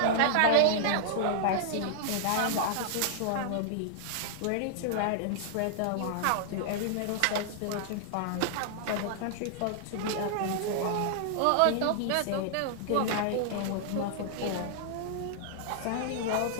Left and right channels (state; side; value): different; both; correlation -0.01